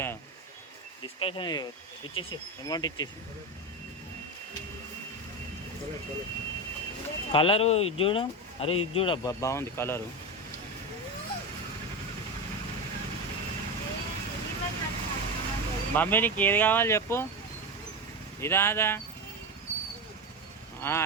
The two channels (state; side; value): normal; both; correlation 0.18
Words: డిస్కషన్ ఇచ్చేసి అమౌంట్ ఇచ్చేసి. కలరు ఇది చూడు. అరే ఇది చూడబ్బా, బాగుంది కలరు. మమ్మీ నీకు ఏది కావాలి చెప్పు. ఇదా అదా?